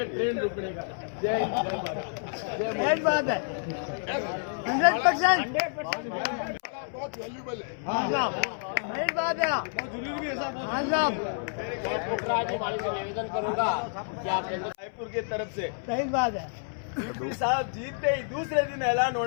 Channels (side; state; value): right; silent; 59 dB below the other